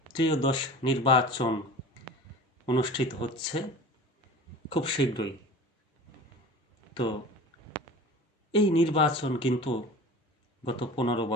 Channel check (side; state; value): both; normal; correlation 0.38